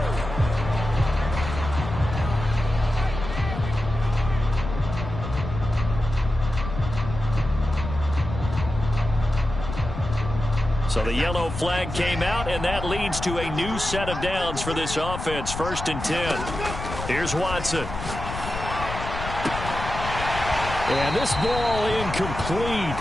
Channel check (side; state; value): left; noise; rumble, 7 dB below the sound